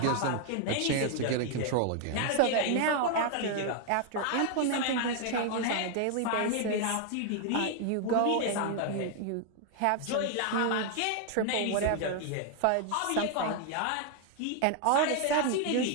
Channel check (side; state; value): both; different; correlation 0.00